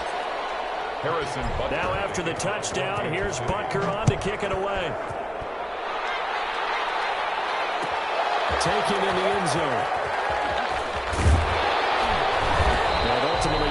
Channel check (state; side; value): identical; both; correlation 1.00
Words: Harrison Butker. Now after the touchdown, here's Butker on to kick it away. Taken in the end zone. And